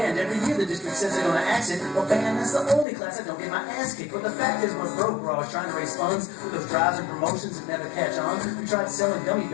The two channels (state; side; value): drops out; right; at 2.9 s